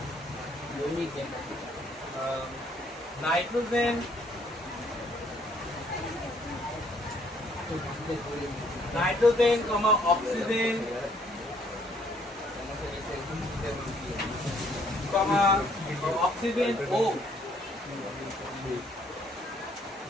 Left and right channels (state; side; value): normal; both; correlation 0.65